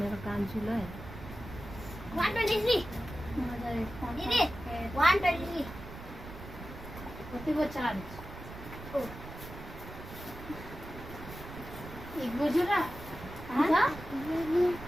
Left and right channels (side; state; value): right; noise; rumble, 12 dB below the sound